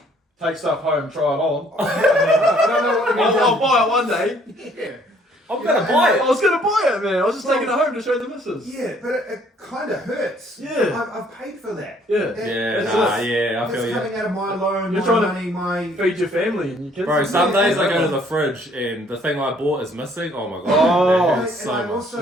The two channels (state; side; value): normal; both; correlation 0.62